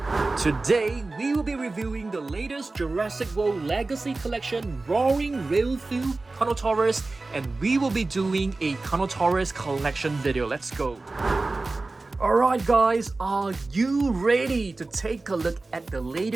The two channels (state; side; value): quieter; left; 3.4 dB